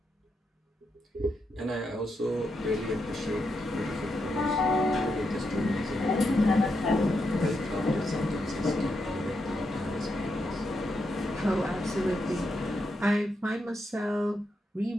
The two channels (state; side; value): normal; both; correlation 0.83